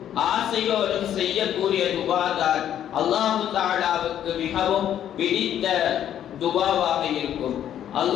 ஆசையோடும் செய்யக்கூடிய துஆதான் அல்லாஹ் தஆலாவுக்கு மிகவும் பிடித்த துஆவாக இருக்கும்.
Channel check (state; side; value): quieter; right; 10.5 dB